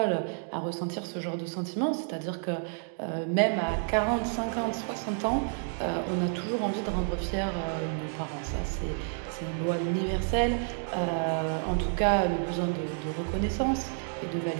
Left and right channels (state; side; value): silent; left; 56 dB below the other